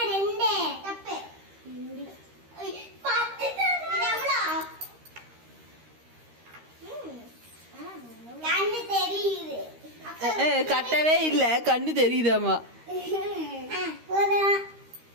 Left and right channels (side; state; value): left; late; 13 ms